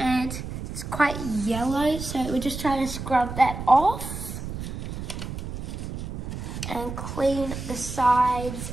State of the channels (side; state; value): right; noise; rumble, 7 dB below the sound